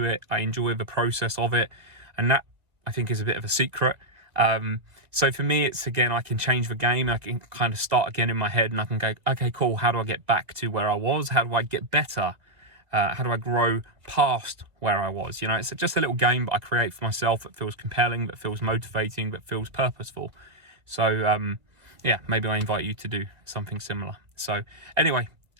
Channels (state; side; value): late; left; 2.0 ms